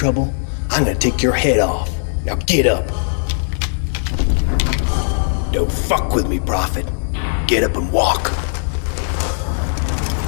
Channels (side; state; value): right; silent; digital silence